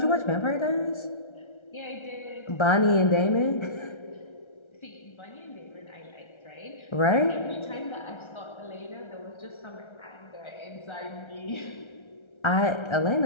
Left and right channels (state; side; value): late; right; 1.3 ms